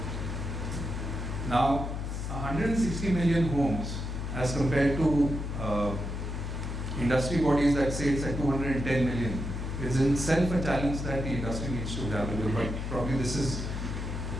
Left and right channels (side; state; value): left; noise; hum, 4 dB below the sound